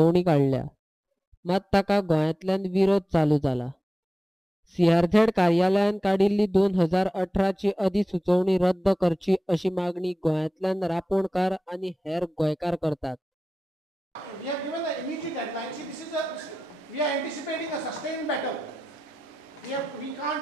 काडल्या, मात ताका गोंयांतल्यान विरोध चालू जाला. CRZ कार्यालयान काडिल्ली 2018 ची अधिसुचोवणी रद्द करची अशी मागणी गोंयांतल्यान रापणकार आनी हेर गोंयकार करतात. We have given the immediate deadline. See, we are anticipating a sustained battle. We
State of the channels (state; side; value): normal; both; correlation 0.93